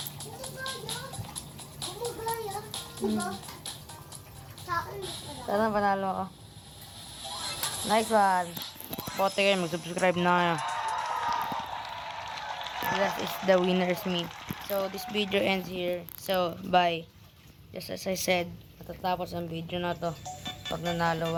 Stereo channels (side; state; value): both; identical; correlation 1.00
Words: Sana panalo ako. Nice one. Bote kayo, mag-subscribe na kayo. That is the winner's me. So, this video ends here. So, bye. Just as I said, matatapos ang video na to pag nanalo